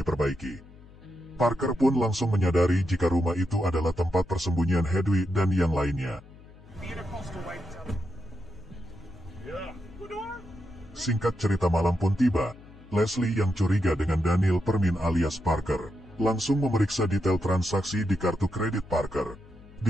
Parker pun langsung menyadari jika rumah itu adalah tempat persembunyian Hedwig dan yang lainnya. Singkat cerita, malam pun tiba. Leslie yang curiga dengan Daniel Permin alias Parker langsung memeriksa detail transaksi di kartu kredit Parker.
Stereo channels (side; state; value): left; noise; hum, 21 dB below the sound